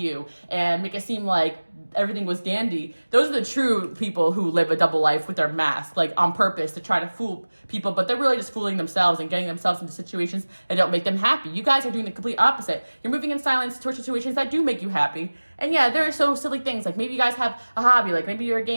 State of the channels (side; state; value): both; inverted; correlation -1.00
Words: and make it seem like everything was dandy. Those are the true people who live a double life with their mask, like on purpose to try to fool people, but they're really just fooling themselves and getting themselves into situations that don't make them happy. You guys are doing the complete opposite. You're moving in silence towards situations that do make you happy. And yeah, there are so silly things, like maybe you guys have a hobby, like maybe you're a